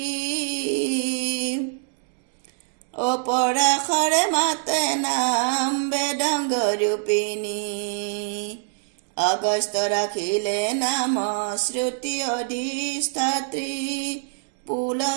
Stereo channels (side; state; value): left; silent; 62 dB below the other